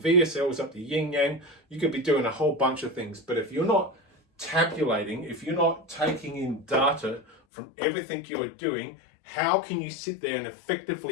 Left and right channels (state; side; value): drops out; right; at 7.4 s